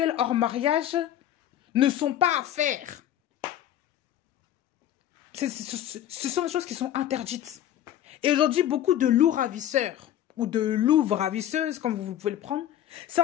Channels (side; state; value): right; quieter; 11.6 dB